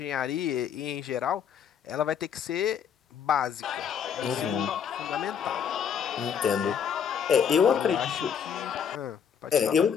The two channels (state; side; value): quieter; right; 7.7 dB